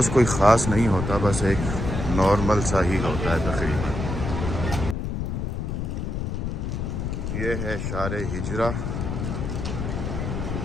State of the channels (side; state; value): left; noise; rumble, 3 dB below the sound